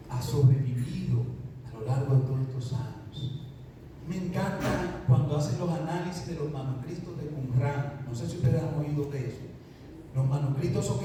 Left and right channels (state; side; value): identical; both; correlation 1.00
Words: ha sobrevivido a lo largo de todos estos años. Me encanta cuando hacen los análisis de los manuscritos de Qumran. No sé si ustedes han oído de eso. Los manuscritos esos que